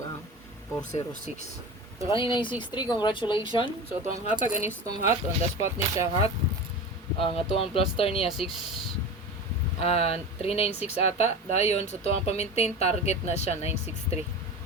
ang 406. So, kanina yung 63. Congratulations. So, itong hatag anis itong hot. On the spot niya siya hot. Ang atuang plaster niya 396 ata dayon sa tuang pa-maintain target na siya 963.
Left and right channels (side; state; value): both; normal; correlation 0.30